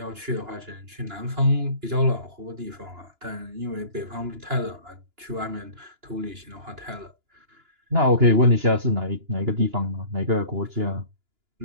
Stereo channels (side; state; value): left; late; 2.9 ms